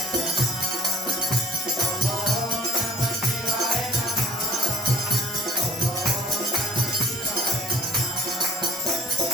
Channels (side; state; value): both; normal; correlation 0.50